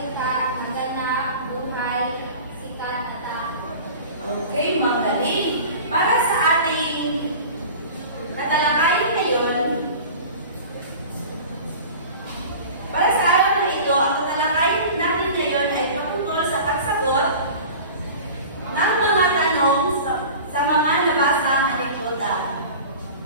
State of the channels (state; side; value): inverted; both; correlation -0.38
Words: naganap, buhay, sikat, at Okay, magaling. Para sa ating tatalakayin ngayon, para sa araw na ito, ang tatalakayin natin ngayon ay tungkol sa pagsagot ng mga tanong sa mga nabasang anekdota.